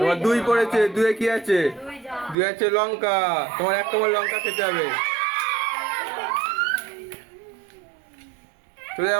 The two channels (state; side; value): drops out; left; at 2.4 s